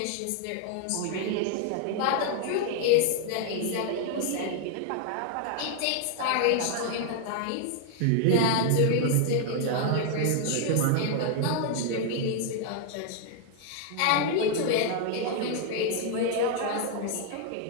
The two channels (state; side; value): different; both; correlation 0.00